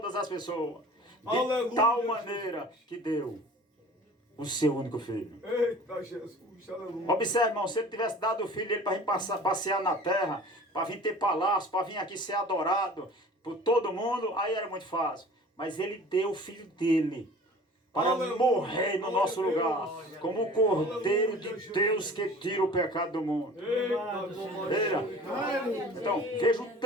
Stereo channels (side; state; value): both; normal; correlation 0.44